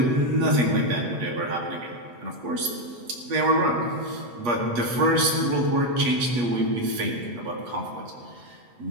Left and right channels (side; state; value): left; late; 8.3 ms